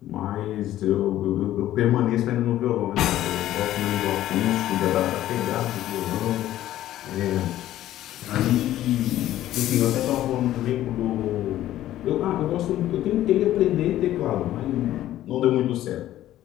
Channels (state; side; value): quieter; right; 13.4 dB